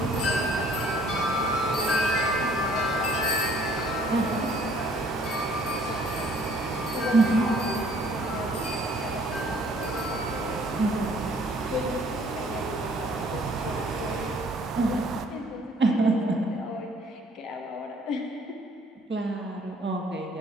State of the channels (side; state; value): both; normal; correlation 0.58